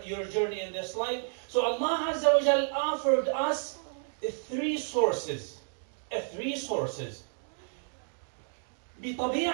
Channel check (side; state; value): left; silent; digital silence